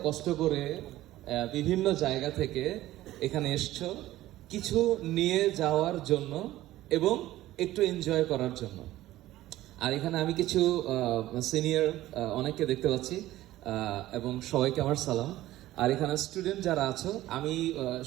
কষ্ট করে বিভিন্ন জায়গা থেকে এখানে এসছো কিছু নিয়ে যাওয়ার জন্য এবং একটু এনজয় করার জন্য। আর এখানে আমি কিছু সিনিয়র অনেককে দেখতে পাচ্ছি, এবং সবাইকে আমার সালাম। আর এখানে স্টুডেন্ট যারা আছো, আমি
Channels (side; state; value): left; quieter; 15.4 dB